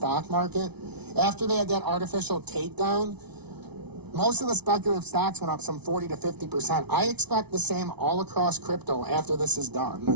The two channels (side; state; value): left; late; 0.99 ms